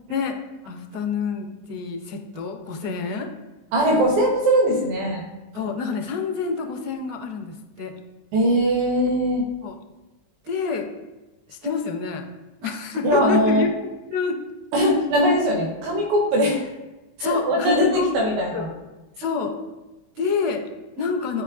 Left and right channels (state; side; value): late; left; 19 ms